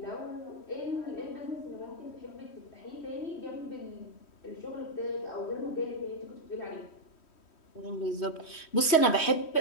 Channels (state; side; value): late; right; 3.1 ms